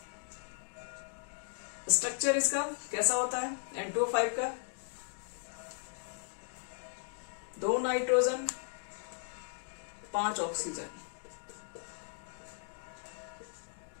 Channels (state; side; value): silent; right; digital silence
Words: स्ट्रक्चर इसका कैसा होता है N2O5 का, 2 नाइट्रोजन 5 ऑक्सीजन,